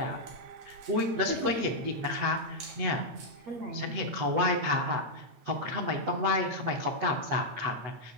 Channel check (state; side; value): late; left; 8.1 ms